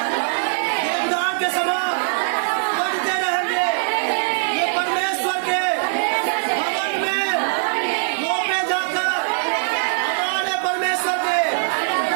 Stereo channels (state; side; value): silent; left; digital silence